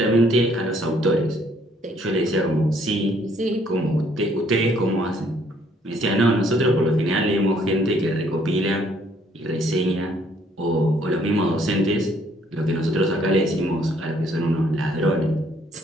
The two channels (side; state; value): both; normal; correlation 0.65